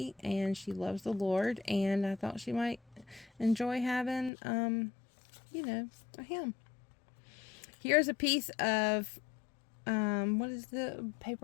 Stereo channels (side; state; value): right; drops out; at 4.3 s